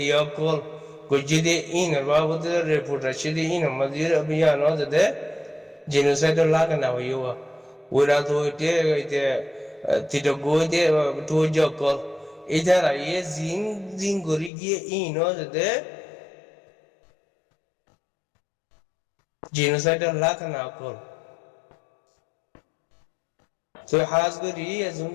कॉल कुछ दे इन बाबूद रिपोर्ट रशीदी इन मजीर अभियान हो दे जिनोसाइड लाग ना हुआ उरा तो इते तितो गोदे तो जो कॉल इधर ये जिन गोरी गिए इन हो दे জিনোসাইডার লাখ না কর তো হাজ করি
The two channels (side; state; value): right; drops out; at 14.5 s